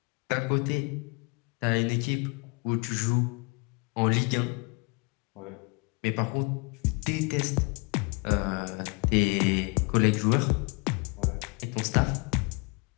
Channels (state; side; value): quieter; right; 31.6 dB